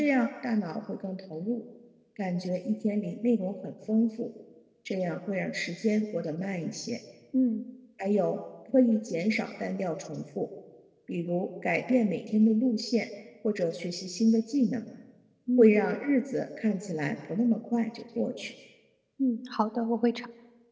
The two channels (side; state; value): both; identical; correlation 1.00